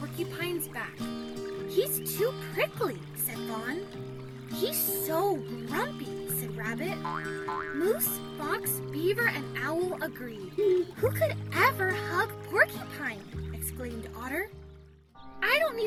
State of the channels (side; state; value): both; identical; correlation 1.00